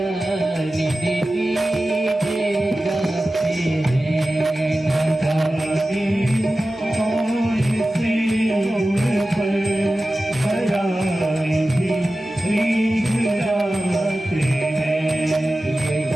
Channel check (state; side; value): normal; both; correlation 0.95